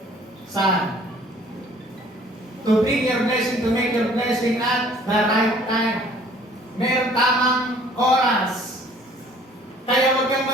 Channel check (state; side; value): normal; both; correlation 0.55